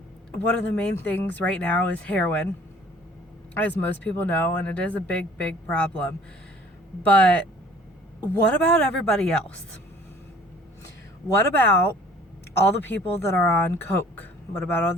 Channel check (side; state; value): both; normal; correlation 0.52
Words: One of the main things right now is heroin, as most people know, and it is a big, big problem. But what about everybody else? What about all the people that are on coke? What about all